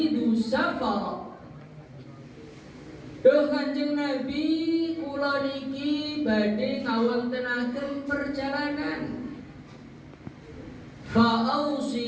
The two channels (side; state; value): both; identical; correlation 1.00